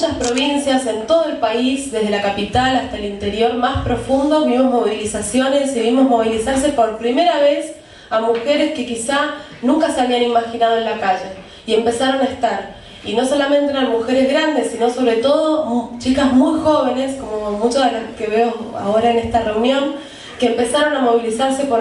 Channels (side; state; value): both; identical; correlation 1.00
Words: provincias, en todo el país, desde la capital hasta el interior más profundo, vimos movilizaciones y vimos movilizarse por primera vez a mujeres que quizá nunca se habían imaginado en la calle, y empezaron a estar. Y no solamente eran mujeres grandes, sino sobre todo chicas muy jóvenes, como muchas de las que veo ahora en esta reunión, que empezaron a movilizarse